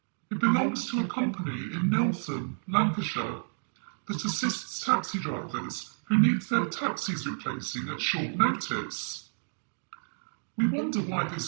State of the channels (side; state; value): left; silent; digital silence